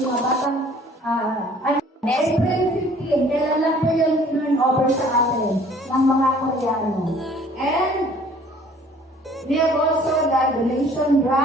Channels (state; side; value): normal; both; correlation 0.54